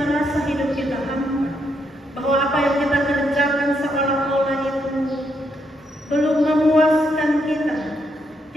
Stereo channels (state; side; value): normal; both; correlation 0.77